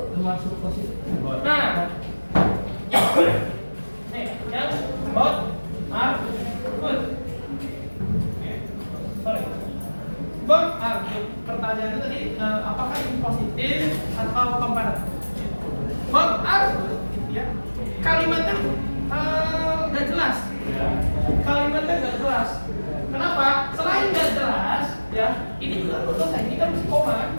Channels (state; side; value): inverted; both; correlation -1.00